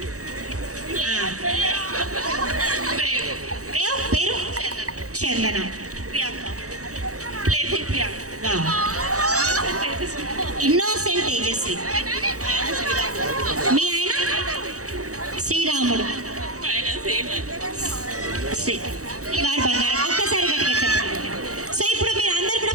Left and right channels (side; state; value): left; late; 0.65 ms